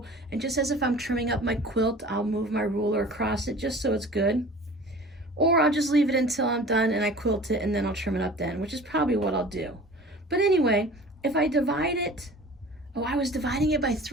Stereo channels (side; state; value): both; normal; correlation 0.43